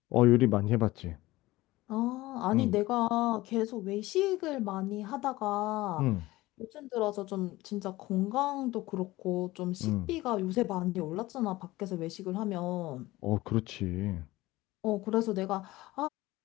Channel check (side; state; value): right; quieter; 18.5 dB